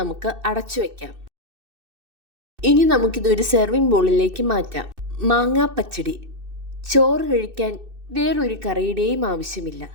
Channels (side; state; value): left; late; 2.6 ms